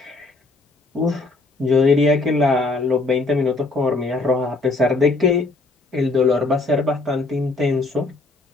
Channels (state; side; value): quieter; right; 3.3 dB